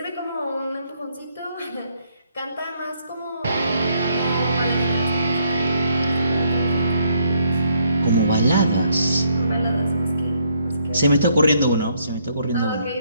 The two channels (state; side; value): inverted; both; correlation -0.71